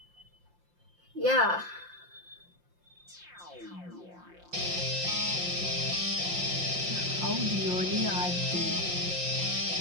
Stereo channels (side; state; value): left; late; 5.7 ms